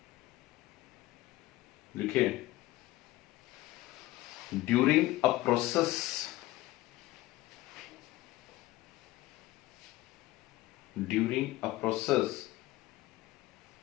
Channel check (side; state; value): right; quieter; 17.5 dB